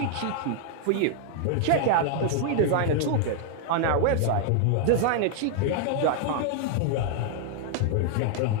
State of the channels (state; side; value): different; both; correlation 0.00